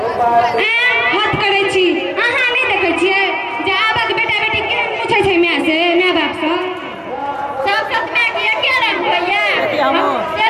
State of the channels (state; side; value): identical; both; correlation 1.00